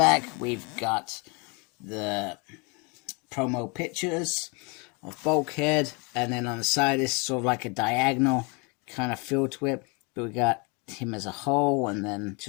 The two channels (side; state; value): right; quieter; 31.1 dB